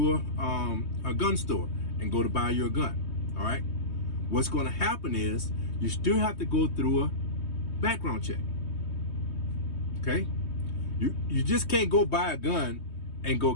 a gun store and go to buy your gun, all right? What's going to happen is you still have to go through a background check, okay? You just can't go buy a gun and go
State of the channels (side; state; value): right; late; 3.2 ms